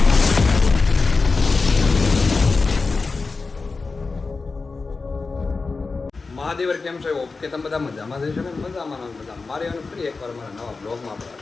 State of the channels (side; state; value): right; quieter; 4.1 dB